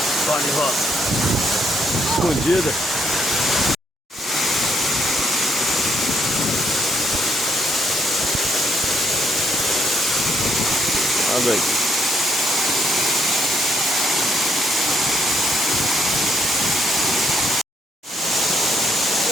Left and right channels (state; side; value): normal; both; correlation 0.72